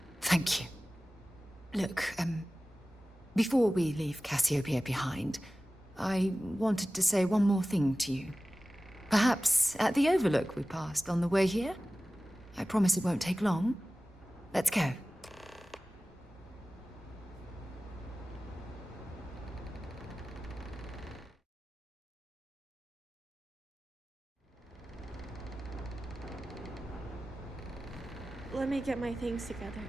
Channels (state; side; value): normal; both; correlation 0.96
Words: Look, before we leave Cassiopeia behind, I wanted to say one more thing to you. Perhaps at the overlook we passed on the way here? I promise it won't take long. Let's go. Let me get my things together,